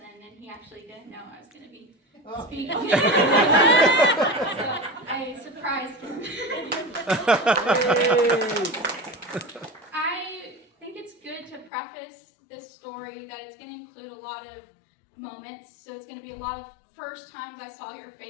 and he actually didn't know I was going to be speaking. So I surprised him. I think it's good to preface this story that it's going to include a lot of moments. So it's going to be a lot of first times I saw your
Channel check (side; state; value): right; drops out; at 11.7 s